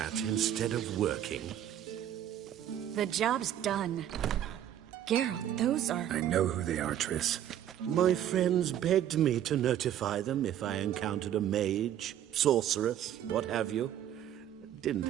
instead of working? The job's done. Geralt, those are... I know who they are, Triss. My friends begged me to notify them if I encountered a mage, sorceress, what have you.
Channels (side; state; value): left; quieter; 10.9 dB